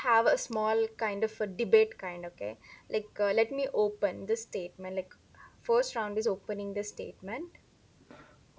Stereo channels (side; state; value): both; identical; correlation 1.00